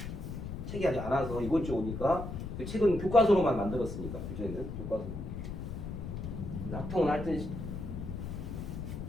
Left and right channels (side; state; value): left; noise; rumble, 6 dB below the sound